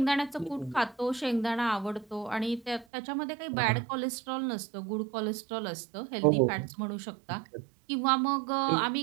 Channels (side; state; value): left; drops out; at 2.9 s